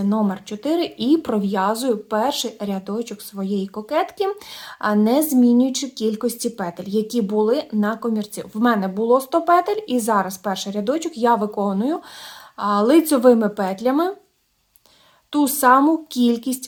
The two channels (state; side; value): identical; both; correlation 1.00